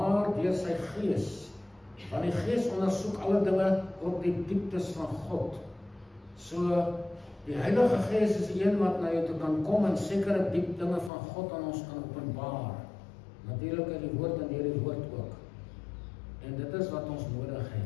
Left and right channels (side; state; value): right; drops out; at 11.1 s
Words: deur sy Gees. Want die Gees ondersoek alle dinge, ook die dieptes van God. So, die Heilige Gees is die een wat na jou toe kan kom en sekere diep dinge van God aan ons kan openbaar. Natuurlik in die woord en deur die woord ook. En dit is wat ons nodig